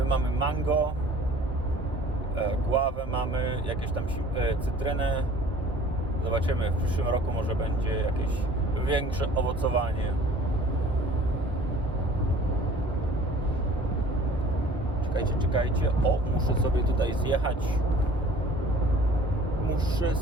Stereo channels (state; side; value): normal; both; correlation 0.49